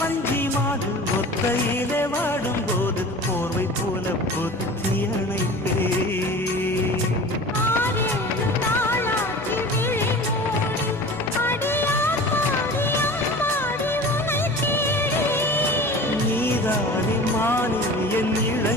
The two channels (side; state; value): both; normal; correlation 0.38